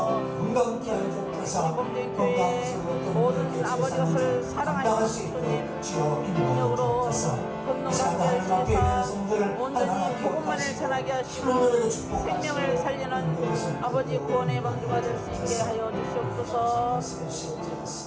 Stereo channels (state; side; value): identical; both; correlation 1.00